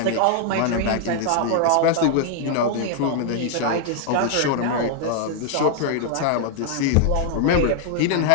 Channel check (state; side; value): different; both; correlation 0.00